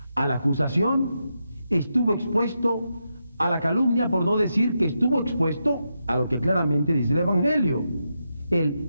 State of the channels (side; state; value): both; inverted; correlation -0.86